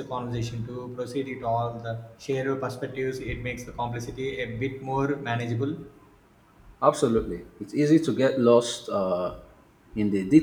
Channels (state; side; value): identical; both; correlation 1.00